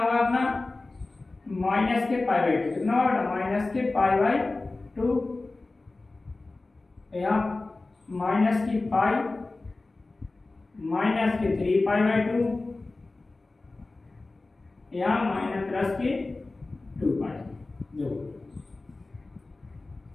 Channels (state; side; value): quieter; right; 3.3 dB